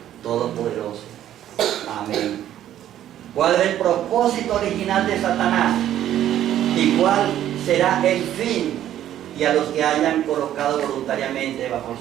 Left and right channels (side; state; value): left; quieter; 11.7 dB